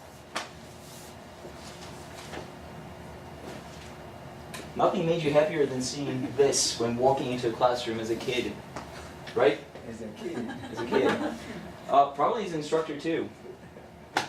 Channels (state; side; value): identical; both; correlation 1.00